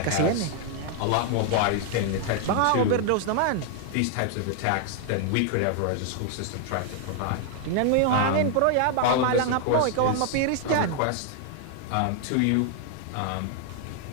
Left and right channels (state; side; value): different; both; correlation 0.00